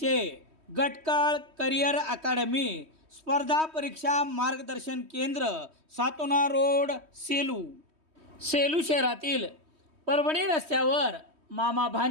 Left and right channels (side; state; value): left; late; 3.2 ms